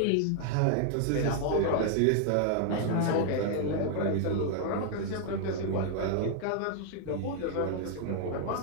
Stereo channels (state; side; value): different; both; correlation 0.00